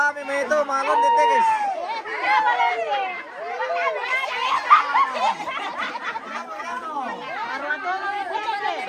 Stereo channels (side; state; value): both; identical; correlation 1.00